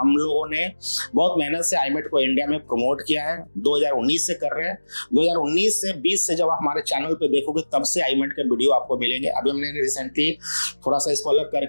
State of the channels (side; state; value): both; inverted; correlation -1.00